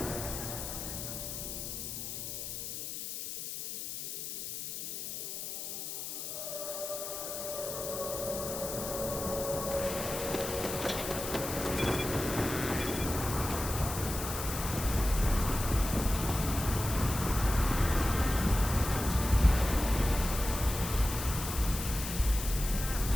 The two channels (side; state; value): left; noise; hiss, 6 dB below the sound